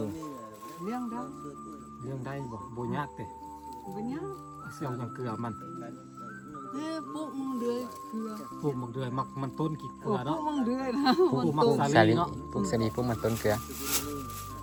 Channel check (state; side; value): identical; both; correlation 1.00